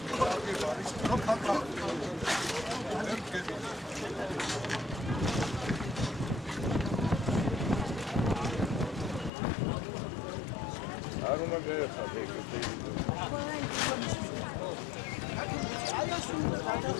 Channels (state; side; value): drops out; right; at 9.3 s